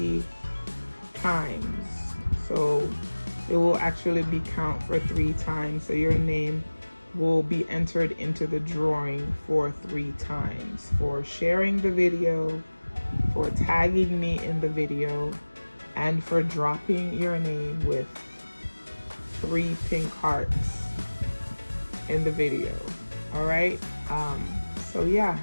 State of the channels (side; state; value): both; inverted; correlation -1.00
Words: times. So it will actually be count for 3 times, so your name will be entered into the drawing for 3 times for sharing the video, for tagging me in the video, and for dropping your name with 3 pink hearts in the video. All right, so yeah,